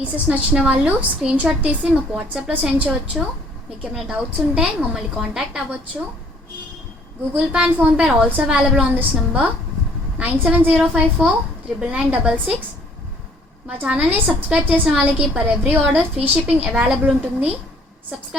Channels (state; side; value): normal; both; correlation 0.59